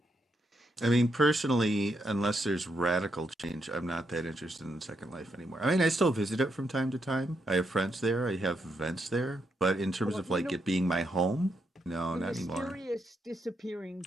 I mean, personally, unless there's radical change, I'm not that interested in Second Life anymore. I mean, I still visit it from time to time. I have friends there. I have events there. But in terms of like it being my home, no, not anymore. The mysterious disappearing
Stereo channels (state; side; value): normal; both; correlation 0.80